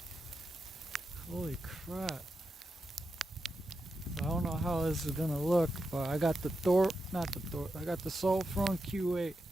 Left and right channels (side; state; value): both; normal; correlation 0.88